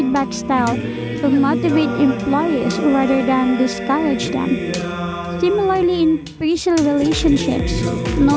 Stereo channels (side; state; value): both; identical; correlation 1.00